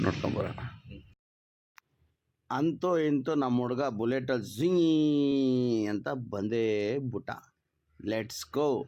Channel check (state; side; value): identical; both; correlation 1.00